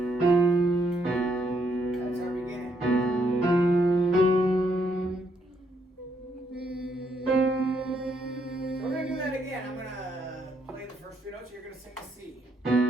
That's our beginning. So we're gonna do that again. I'm gonna play the first 3 notes. You're gonna sing the C.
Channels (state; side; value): normal; both; correlation 0.74